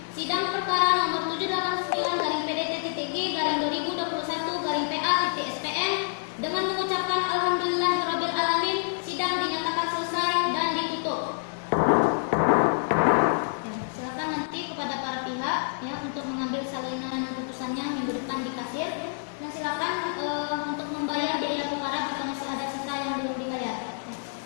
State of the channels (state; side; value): silent; right; 60 dB below the other